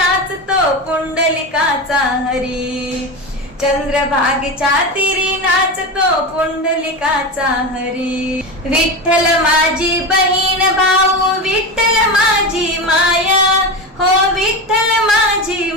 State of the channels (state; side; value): normal; both; correlation 0.21